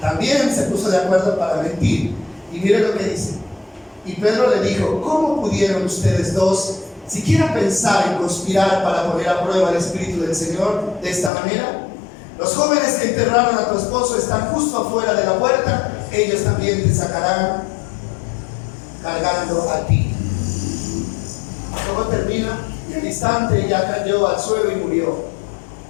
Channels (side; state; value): right; drops out; at 11.3 s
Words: se puso de acuerdo para mentir. Y mire lo que dice. Y Pedro le dijo, ¿cómo pudieron ustedes dos siquiera pensar en conspirar para poner a prueba el Espíritu del Señor de esta manera? Los jóvenes que enterraron a tu esposo están justo afuera de la puerta. Ellos también te sacarán cargando a ti. Luego termina y al instante ella cayó al suelo y murió.